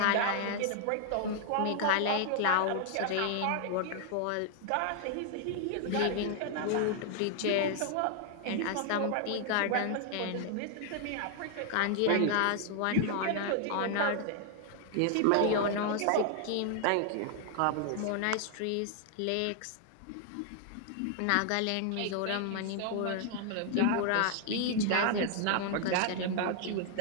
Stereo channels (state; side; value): different; both; correlation 0.00